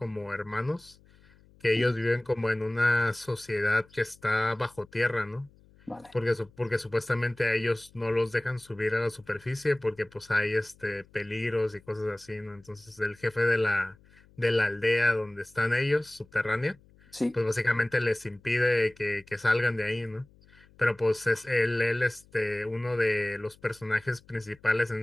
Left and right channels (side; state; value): left; noise; hum, 28 dB below the sound